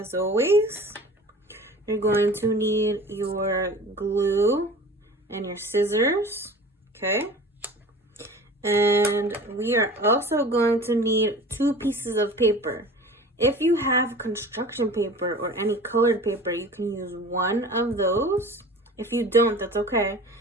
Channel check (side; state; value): both; normal; correlation 0.40